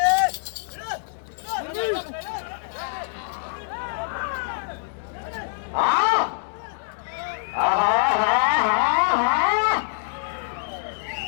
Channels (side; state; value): right; silent; 62 dB below the other